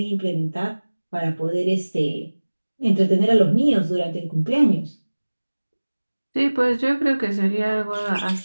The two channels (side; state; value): both; inverted; correlation -1.00